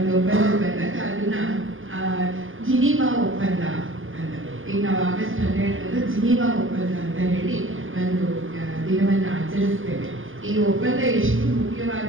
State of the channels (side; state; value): left; late; 0.58 ms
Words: ಒಪ್ಪಂದ ಬಂದಾಗ ಅದನ್ನ ಜಿನೀವಾ ಒಪ್ಪಂದ ಅಂತ, ಈಗ ನಾವು ಆಗಸ್ಟ್ 12 ಜಿನೀವಾ ಒಪ್ಪಂದ ಅಂತ ಹೇಳಿ ಒಂದು ದಿನವನ್ನು ಆಚರಿಸ್ತೇವೆ. ಈ ಒಪ್ಪಂದ ಎಷ್ಟು